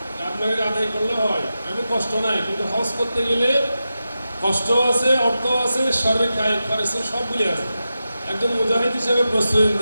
আপনাকে আদায় করলে হয়, এমন কষ্ট নাই, কিন্তু হজ করতে গেলে কষ্ট আছে, অর্থ আছে, শারীরিক কায়িক খরচ সবগুলি আছে। একজন মুজাহিদ হিসেবে প্রস্তুতি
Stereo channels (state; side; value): inverted; both; correlation -0.91